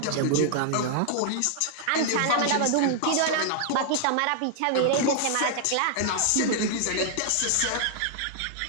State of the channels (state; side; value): different; both; correlation -0.01